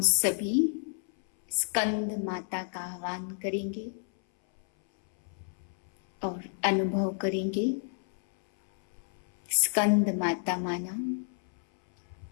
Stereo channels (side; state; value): right; silent; 58 dB below the other